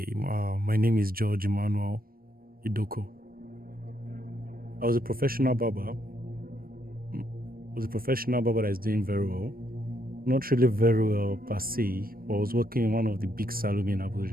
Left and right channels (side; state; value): left; late; 0.43 ms